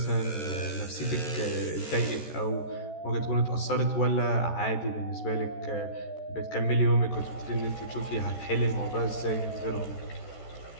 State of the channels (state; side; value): late; right; 14 ms